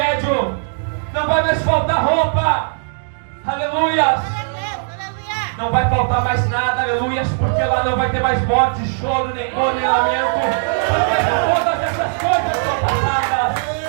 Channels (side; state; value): left; silent; digital silence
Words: não vai mais faltar roupa, aleluia. Não vai faltar mais nada, aleluia, porque lá não vai ter mais morte, choro, nem dor, nem lamento, porque todas essas coisas são passadas.